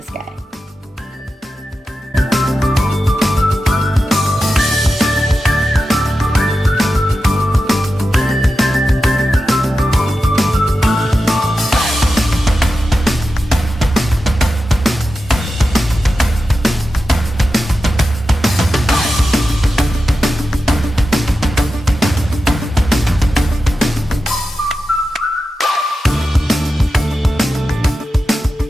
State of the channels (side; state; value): both; normal; correlation 0.91